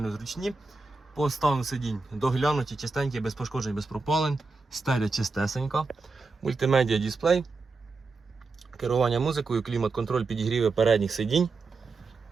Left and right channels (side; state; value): left; quieter; 4.0 dB